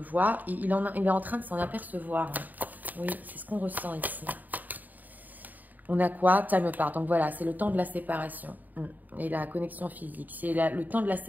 Et il est en train de s'en apercevoir. Oui, c'est ce qu'on ressent ici. On a quoi? Time apart. Donc voilà, c'est le temps de la séparation et la connexion physique. C'est le temps de la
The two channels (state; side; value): late; left; 0.084 ms